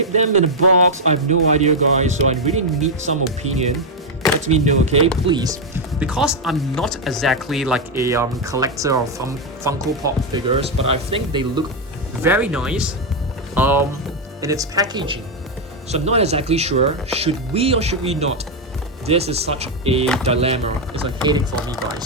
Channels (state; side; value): normal; both; correlation 0.03